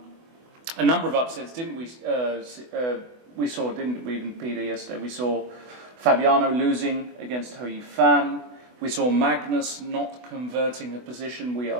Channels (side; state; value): left; late; 24 ms